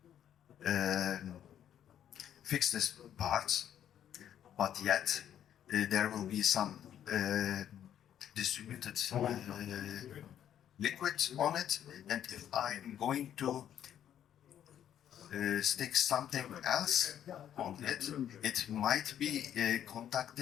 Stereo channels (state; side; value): quieter; right; 10.2 dB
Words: fix this part, but yet there will be some distributed liquid on it, and if I'm going to stick something else on it, it might be